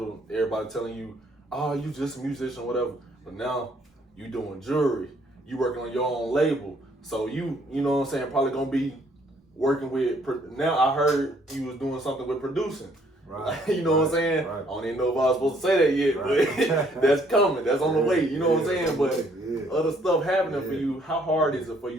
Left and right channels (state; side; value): normal; both; correlation 0.65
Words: everybody telling you, oh, you just a musician or whatever. But now you doing jewelry, you working on your own label. So you know what I'm saying, probably gonna be working with, now I heard you was doing something with producing. Right. You know what I'm saying? Right. I don't even know if I was supposed to say that yet, Right. but that's coming, that's on the way, you know what I'm saying? But yeah. other stuff happening for Yeah. you, how hard is it for